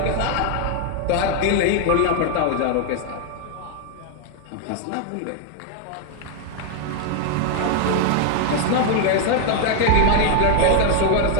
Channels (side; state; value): both; different; correlation 0.00